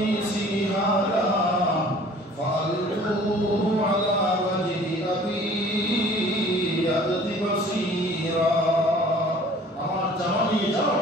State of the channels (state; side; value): normal; both; correlation 0.50